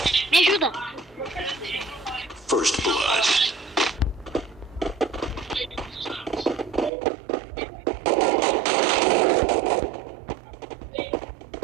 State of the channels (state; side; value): drops out; left; at 6.9 s